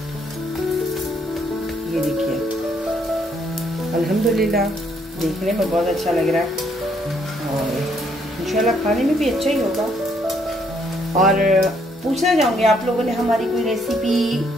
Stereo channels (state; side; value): normal; both; correlation 0.69